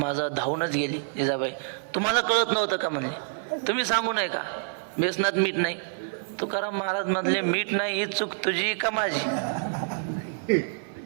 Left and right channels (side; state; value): left; silent; 58 dB below the other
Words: माझा धावूनच गेली. जिजाबाई, तुम्हाला कळत नव्हतं का म्हणले, तुम्ही सांगू नये का बेसनात मीठ नाही. तुकाराम महाराज म्हणले मीठ नाही ही चूक तुझी का माझी?